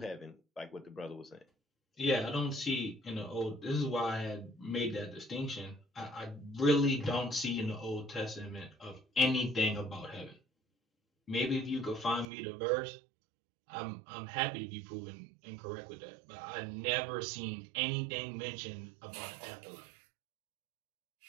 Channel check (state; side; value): drops out; left; at 12.2 s